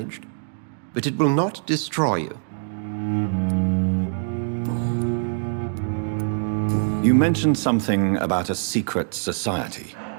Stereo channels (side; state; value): left; silent; digital silence